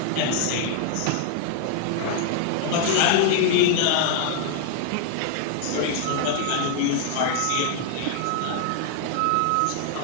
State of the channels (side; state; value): both; different; correlation 0.00